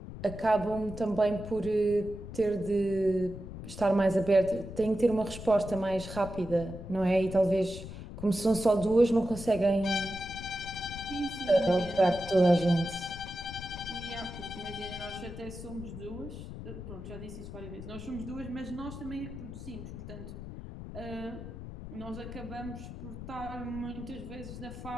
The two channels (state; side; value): noise; left; rumble, 11 dB below the sound